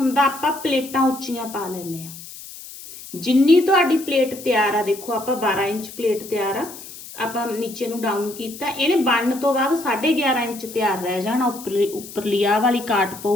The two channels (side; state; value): left; noise; hiss, 15 dB below the sound